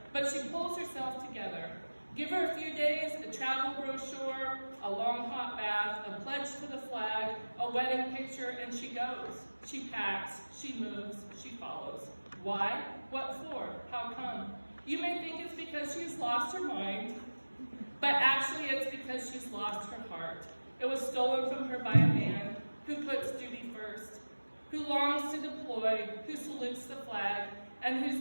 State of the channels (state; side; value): inverted; both; correlation -1.00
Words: but she pulls herself together. Give her a few days, a travel brochure, a long hot bath, a pledge to the flag, a wedding picture, and she goes. She packs, she moves, she follows. Why? What for? How come? You may think it's because she's lost her mind, but actually it's because she's lost her heart. It was stolen from her by a man who puts duty first, who longs to deploy, who salutes the flag, and